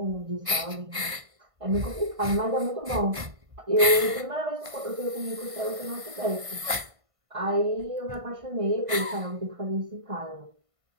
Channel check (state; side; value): late; left; 1.5 ms